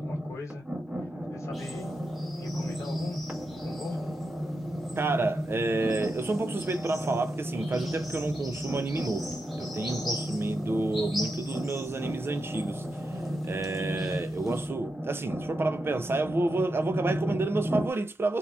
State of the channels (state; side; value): normal; both; correlation 0.87